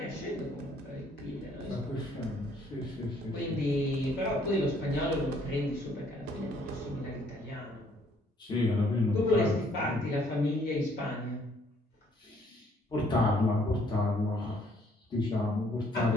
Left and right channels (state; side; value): normal; both; correlation 0.64